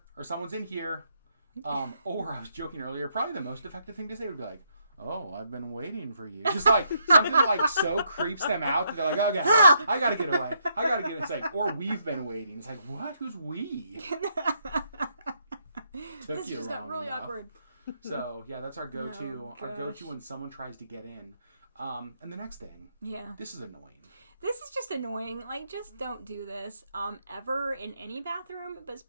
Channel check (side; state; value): both; inverted; correlation -0.75